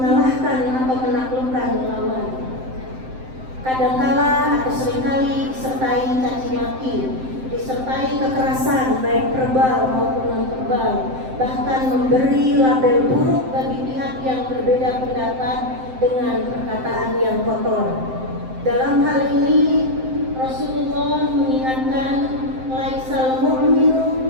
atau menaklukkan lawan. Kadangkala atau seringkali disertai caci maki, disertai kekerasan baik verbal maupun non-verbal, bahkan memberi label buruk bagi pihak yang berbeda pendapat dengan perkataan yang kotor. Dalam hal ini Rasulullah mengingatkan, laisal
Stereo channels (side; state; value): left; late; 7.7 ms